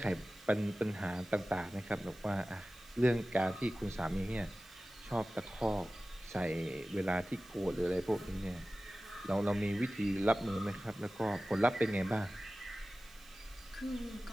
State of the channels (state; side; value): noise; right; hiss, 26 dB below the sound